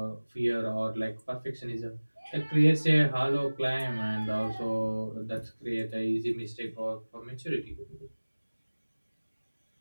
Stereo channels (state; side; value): inverted; both; correlation -1.00